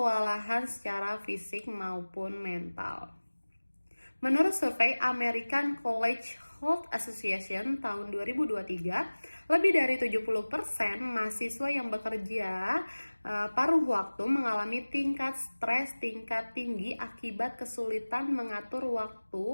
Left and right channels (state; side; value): inverted; both; correlation -1.00